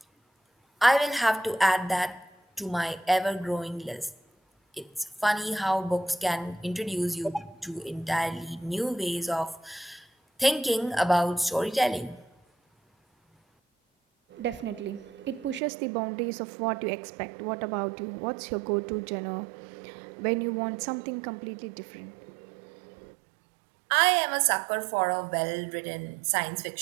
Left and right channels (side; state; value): left; drops out; at 15.6 s